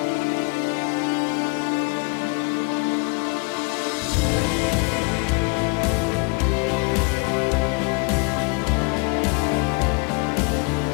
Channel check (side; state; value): right; quieter; 31.2 dB